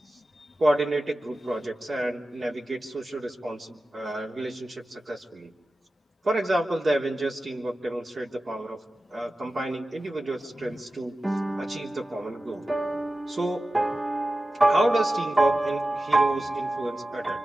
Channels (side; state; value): both; normal; correlation 0.94